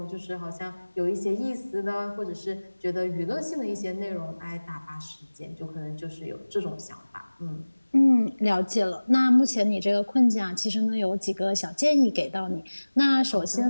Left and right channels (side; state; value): both; inverted; correlation -1.00